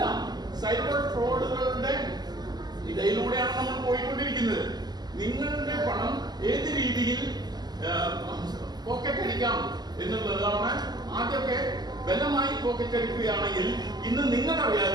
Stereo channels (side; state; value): left; late; 0.20 ms